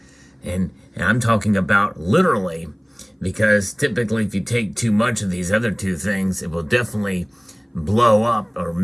And I'm talking about literally, because typically if you take too much of these other two things, it will definitely blow up or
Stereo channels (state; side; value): identical; both; correlation 1.00